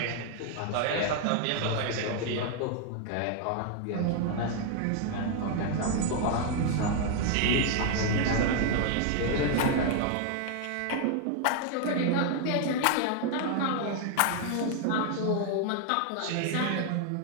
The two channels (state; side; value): different; both; correlation 0.00